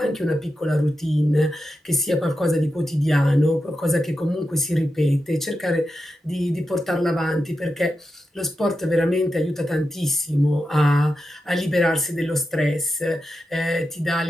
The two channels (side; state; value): both; normal; correlation 0.89